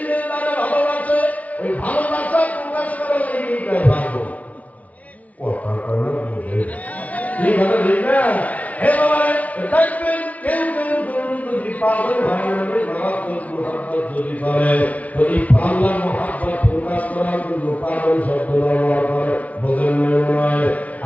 তারা ভালোবাসে, ওই ভালোবাসা প্রকাশ করার লেগে ভালো কথা কয় না বুঝে ঠিক আছে ঠিক না? হে বাবা দেখবেন কেউ কেউ যদি পাগল হয় না মারাত্মক মুহাব্বত যদি করে, যদি আল্লাহ মুহাব্বত প্রকাশ করার জন্য পাগল শব্দ ব্যবহার করে, বোঝেন নয়?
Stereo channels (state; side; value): late; right; 0.070 ms